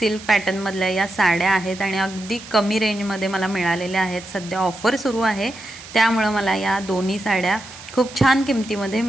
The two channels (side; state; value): right; noise; hiss, 16 dB below the sound